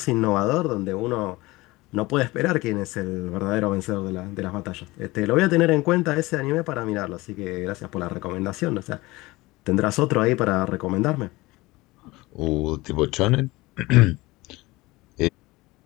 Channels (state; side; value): quieter; right; 21.0 dB